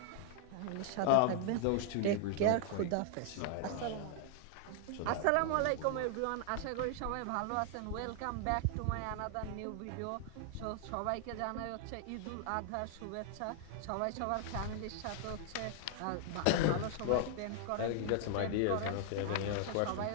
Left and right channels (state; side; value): different; both; correlation 0.00